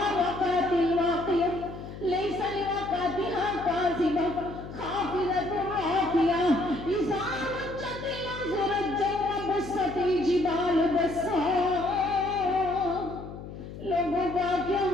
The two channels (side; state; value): left; noise; hum, 12 dB below the sound